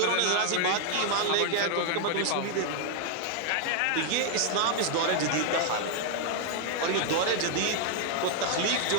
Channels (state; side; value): different; both; correlation 0.00